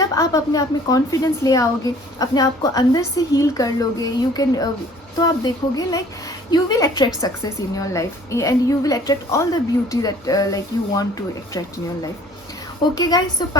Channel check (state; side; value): normal; both; correlation 0.53